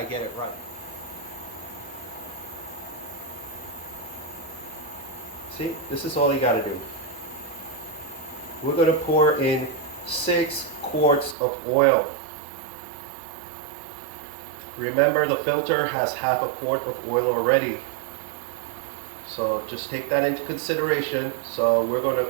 get it right. See, this is all you gotta do. We're gonna pour in 6 quarts of oil. Remember, the filter has half a quart of oil already. So just take that into consideration. So we're gonna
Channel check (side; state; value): left; drops out; at 11.4 s